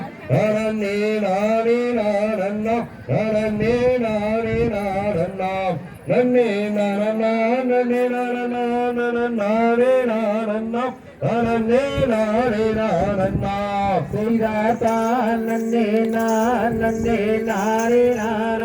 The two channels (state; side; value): identical; both; correlation 1.00